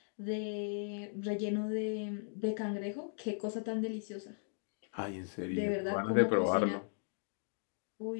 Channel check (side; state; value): right; silent; digital silence